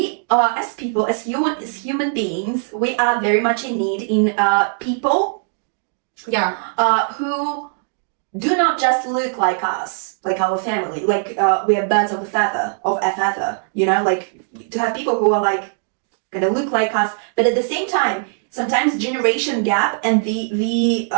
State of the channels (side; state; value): left; silent; digital silence